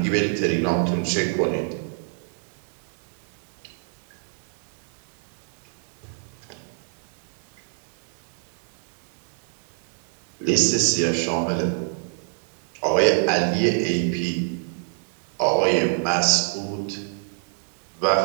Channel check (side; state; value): left; silent; 59 dB below the other